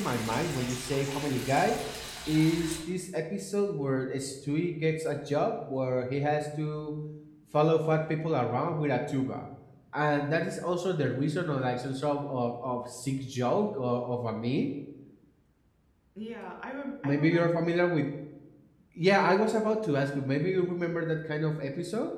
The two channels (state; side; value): identical; both; correlation 1.00